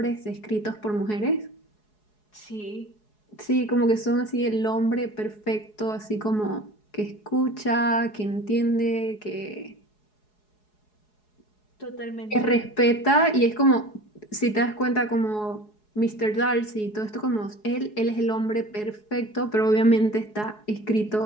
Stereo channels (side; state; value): right; late; 4.7 ms